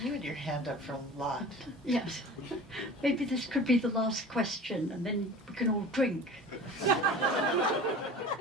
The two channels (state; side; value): normal; both; correlation 0.39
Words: you had your hand up for a lot. Yes. Maybe this could be the last question, and then we can all drink.